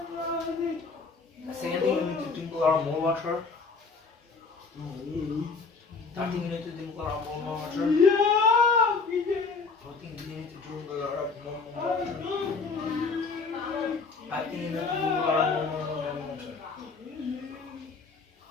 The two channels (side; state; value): right; quieter; 4.5 dB